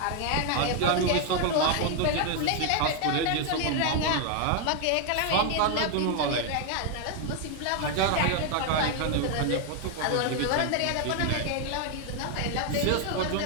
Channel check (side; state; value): both; different; correlation 0.00